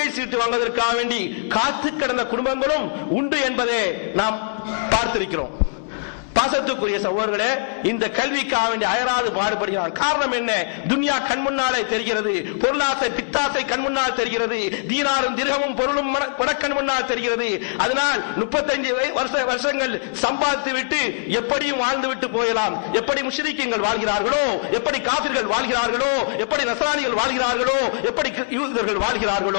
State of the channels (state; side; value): silent; right; 63 dB below the other